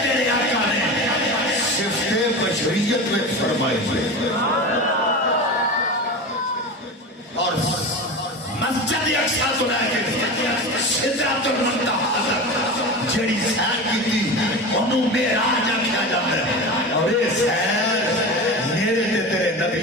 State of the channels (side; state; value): both; normal; correlation 0.28